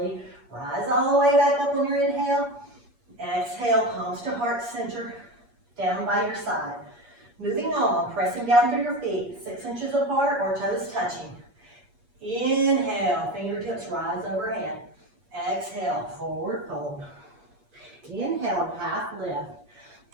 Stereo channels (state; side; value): late; left; 8.4 ms